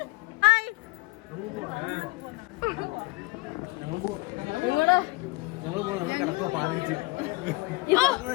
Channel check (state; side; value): quieter; right; 24.2 dB